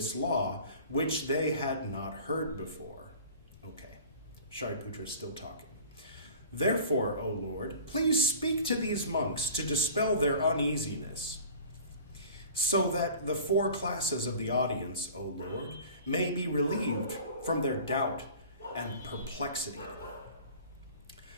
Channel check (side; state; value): both; inverted; correlation -0.43